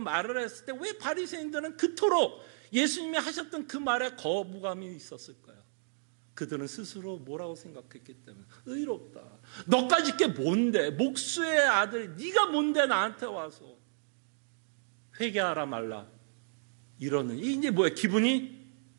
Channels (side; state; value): left; silent; digital silence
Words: 했을 때 왜 바리새인들은 그토록 예수님이 하셨던 그 말에 거부감이 있었을까요? 그들은 스스로 뭐라고 생각했기 때문에 의롭다. 너까지 게 뭔데? 목수의 아들 네가 뭔데 나한테 와서 회개하라 말라 이러는 이제 뭐야? 기분이